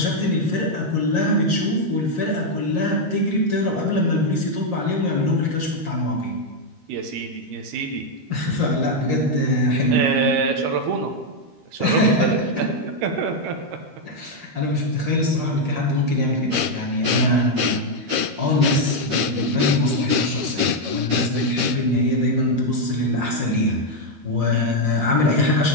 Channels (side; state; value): left; late; 13 ms